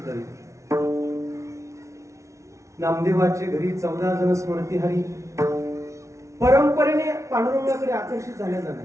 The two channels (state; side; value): late; left; 0.14 ms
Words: नामदेवाच्या घरी 14 जण स्मरती हरी. परंपरेने पांडुरंगाकडे आकर्षित झाल्या जाणार